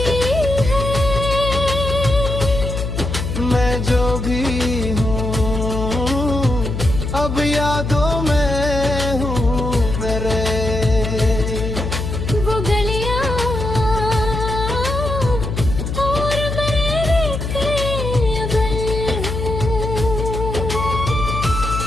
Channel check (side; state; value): left; noise; hum, 4 dB below the sound